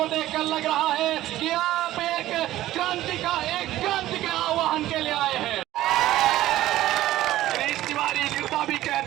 देखकर लग रहा है कि आप एक क्रांति के आह्वान के लिए आए हैं। तिवारी गिरदा भी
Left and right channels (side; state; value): left; quieter; 14.8 dB